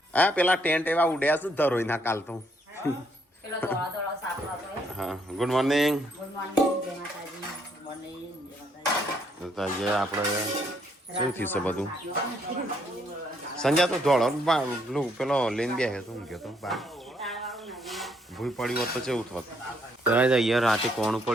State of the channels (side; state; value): both; normal; correlation 0.71